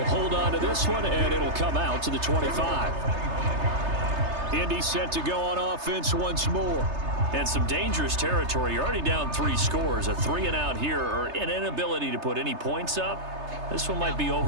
hold on to this one, and it'll come out to the 25. Indy set to go on offense once more. And some dangerous territory. You're already down 3 scores. A 3-and-out here, or an inability to put any points up. This one might be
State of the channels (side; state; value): left; late; 3.3 ms